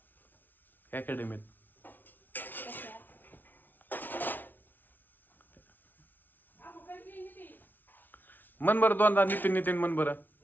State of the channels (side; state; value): right; late; 0.087 ms